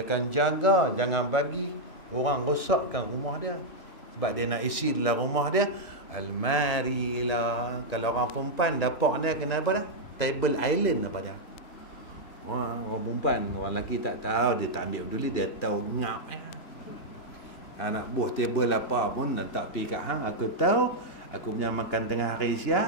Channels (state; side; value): late; right; 3.0 ms